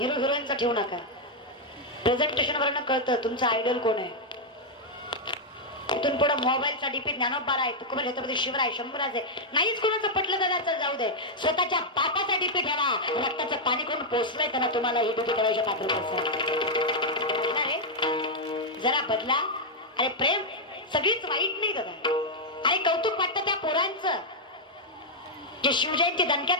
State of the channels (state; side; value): normal; both; correlation -0.02